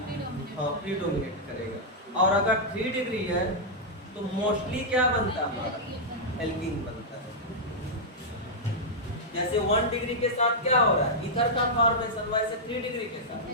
हाँ प्रीडोमिनेट करेगा। और अगर 3 डिग्री है तो मोस्टली क्या बनता है हमारा, एल्कीन बनता है। जैसे 1 डिग्री के साथ क्या हो रहा है ईथर का फॉर्मेशन, वैसे 3 डिग्री के साथ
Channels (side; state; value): both; normal; correlation -0.07